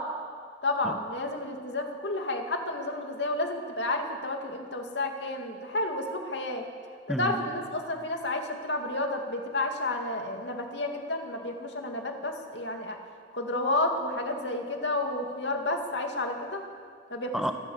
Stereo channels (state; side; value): normal; both; correlation -0.17